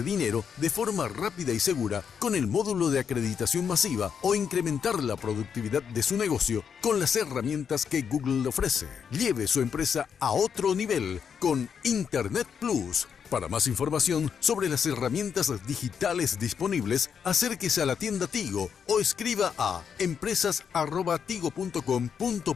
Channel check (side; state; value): right; quieter; 7.1 dB